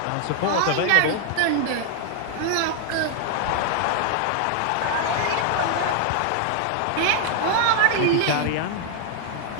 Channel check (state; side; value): different; both; correlation 0.00